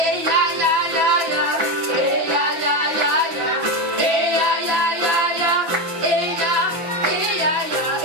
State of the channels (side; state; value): left; late; 6.0 ms